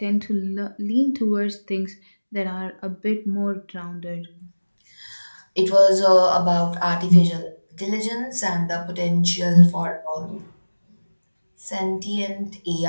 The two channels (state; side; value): inverted; both; correlation -1.00